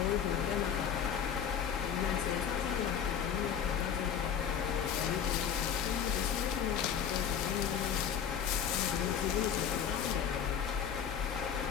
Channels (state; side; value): quieter; right; 8.2 dB